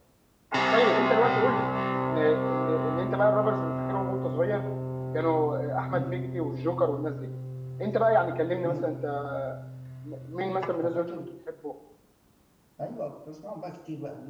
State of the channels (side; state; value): both; identical; correlation 1.00